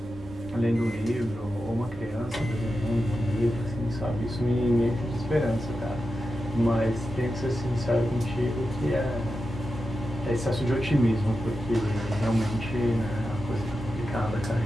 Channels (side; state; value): both; normal; correlation 0.90